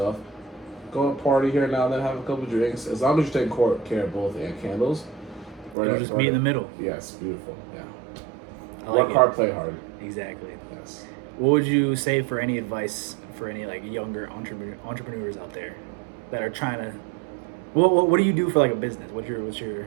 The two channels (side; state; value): left; drops out; at 5.8 s